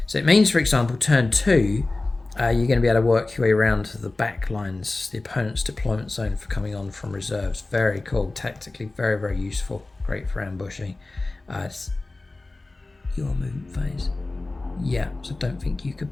So it means, for example, turn 2, you're going to be able to work your way around the back lines, the opponent's deployment zone for coming on from reserves. Very cool, tactically very, very useful. Great for ambushing. It's your movement phase. Yeah, so don't think you could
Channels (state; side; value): quieter; right; 3.1 dB